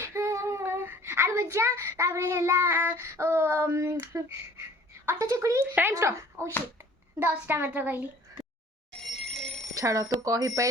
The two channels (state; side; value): normal; both; correlation 0.51